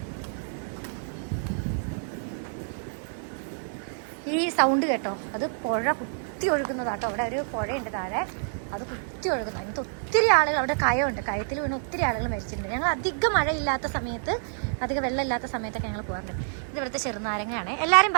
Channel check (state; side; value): silent; left; digital silence